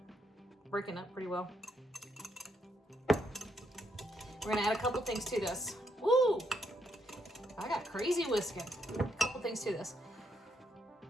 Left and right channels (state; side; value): normal; both; correlation 0.76